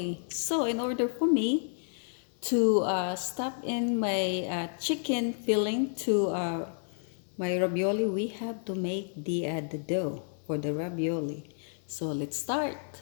So in order for me to stuff in my chicken filling to my ravioli, we have to make the dough for the ravioli. So let's start.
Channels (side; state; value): right; silent; digital silence